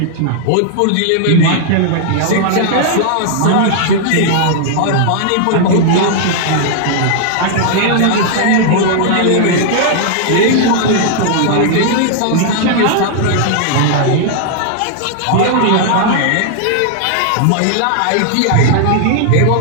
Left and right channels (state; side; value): different; both; correlation -0.01